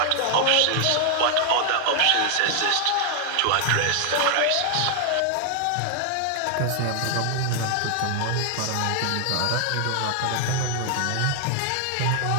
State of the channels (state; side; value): different; both; correlation 0.00